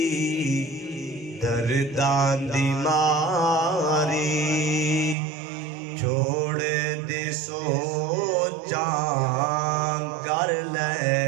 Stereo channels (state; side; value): drops out; left; at 5.2 s